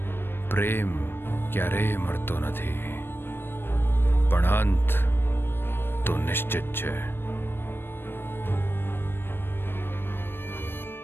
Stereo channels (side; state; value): right; late; 0.10 ms